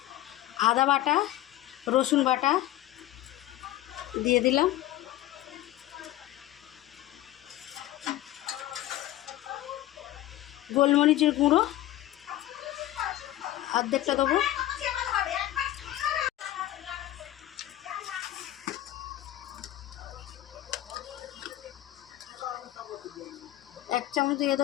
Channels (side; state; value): right; quieter; 14.6 dB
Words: আদা বাটা, রসুন বাটা দিয়ে দিলাম। গোলমরিচের গুঁড়ো অর্ধেকটা দেবো। এক চামচ দিয়ে